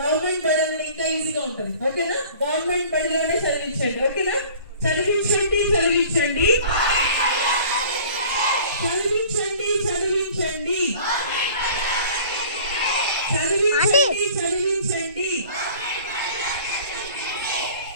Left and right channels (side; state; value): both; inverted; correlation -0.47